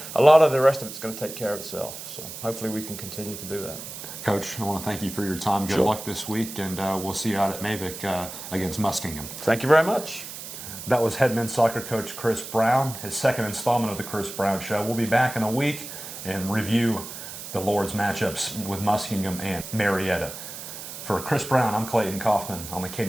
a lot of the rest of it's going to take care of itself. So hopefully we can continue to do that. Coach, I want to thank you for your time. Good luck this week, and we'll see you out at Mavic against Muskingum. Thank you very much. That was head men's soccer coach Chris Brown, his second installment of the Chris Brown Show. We'll be back in a week and review the Lord's matchups with Muskingum and Marietta. For Chris Brown, I'm Clayton Kaufman on the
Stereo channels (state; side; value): noise; right; hiss, 10 dB below the sound